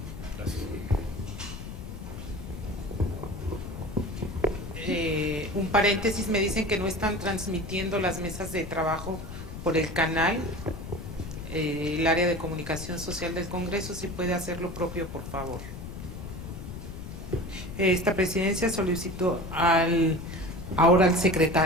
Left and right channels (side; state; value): left; noise; rumble, 10 dB below the sound